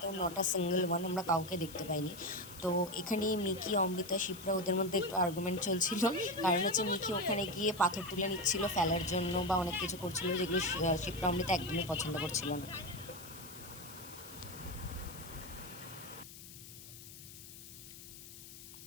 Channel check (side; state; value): left; noise; hiss, 15 dB below the sound